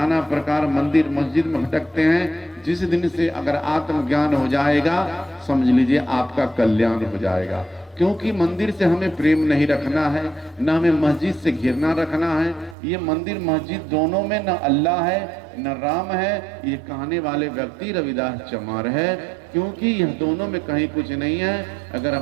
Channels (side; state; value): left; drops out; at 12.8 s